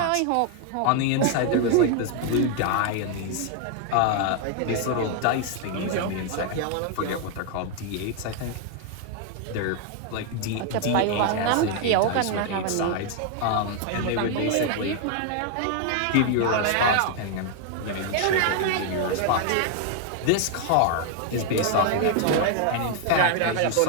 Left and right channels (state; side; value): different; both; correlation 0.00